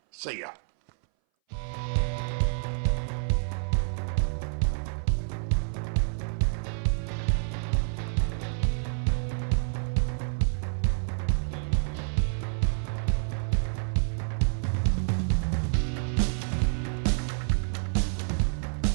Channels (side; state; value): left; silent; 59 dB below the other